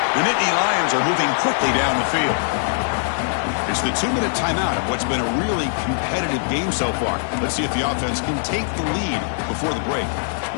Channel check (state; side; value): silent; right; digital silence